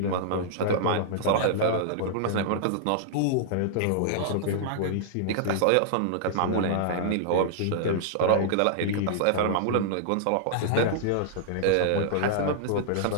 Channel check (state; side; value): different; both; correlation -0.01